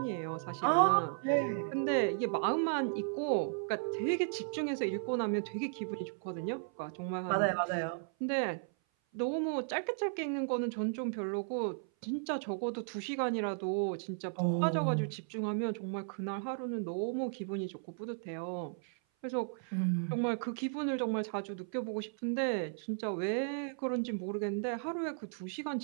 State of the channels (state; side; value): silent; left; 54 dB below the other